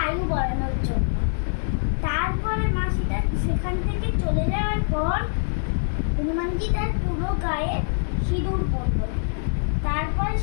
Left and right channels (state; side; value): silent; right; 62 dB below the other